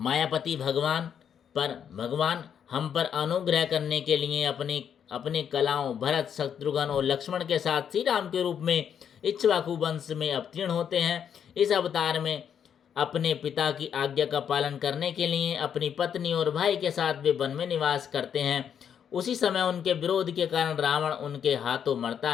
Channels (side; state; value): right; quieter; 8.3 dB